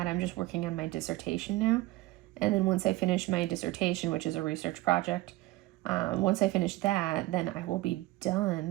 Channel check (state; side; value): quieter; left; 18.4 dB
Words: I'm just working on my dissertation now. And then once I finish my dissertation, which is a research project, once I finish that, then I will be